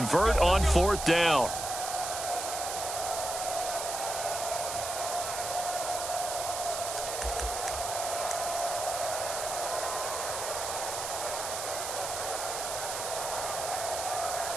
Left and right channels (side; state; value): right; noise; hiss, 4 dB below the sound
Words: on 4th down.